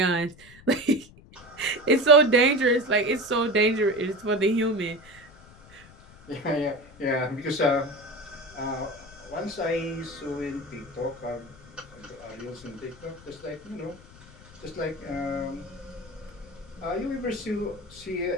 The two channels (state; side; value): noise; left; rumble, 22 dB below the sound